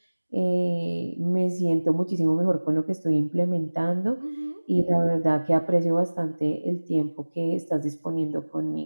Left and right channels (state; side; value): inverted; both; correlation -1.00